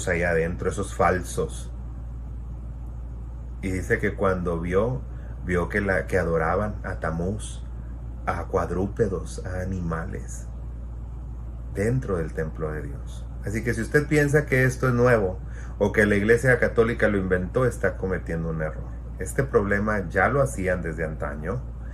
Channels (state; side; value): identical; both; correlation 1.00